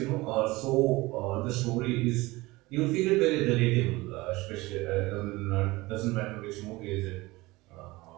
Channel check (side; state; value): left; quieter; 21.1 dB